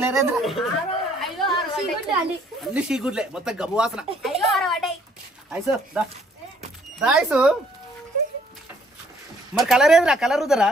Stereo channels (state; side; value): normal; both; correlation 0.63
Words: అన్ని షీగుడ్లే, మొత్తం గబ్బు వాసన. ఐసు మరి కలర్ ఏదిరా? కలర్ ఉదరా?